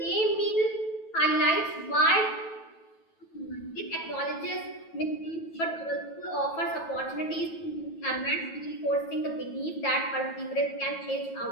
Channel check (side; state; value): right; late; 9.2 ms